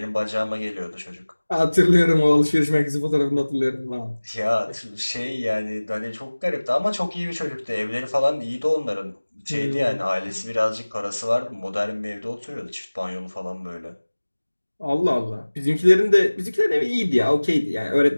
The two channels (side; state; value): both; inverted; correlation -1.00